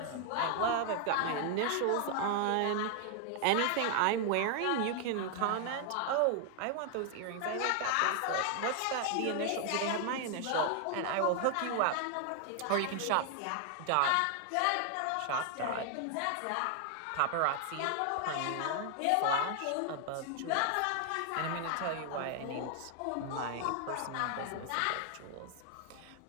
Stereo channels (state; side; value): different; both; correlation 0.00